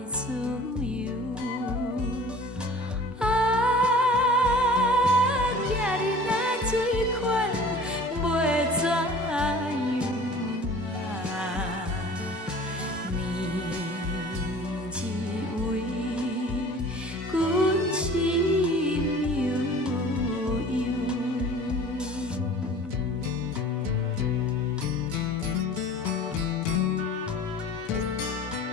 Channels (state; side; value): normal; both; correlation 0.44